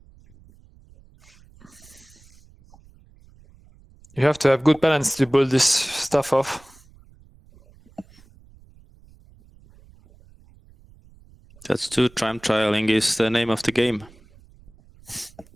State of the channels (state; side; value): noise; right; rumble, 27 dB below the sound